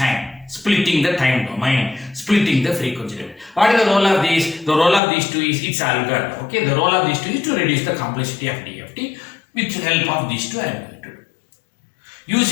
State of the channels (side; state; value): right; drops out; at 5.0 s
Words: splitting the time domain, splitting the frequency domain. What is the role of these? The role of these two is its algorithm. Okay, the role of these two is to reduce the complexity of DFT. With the help of these two, I am going to do.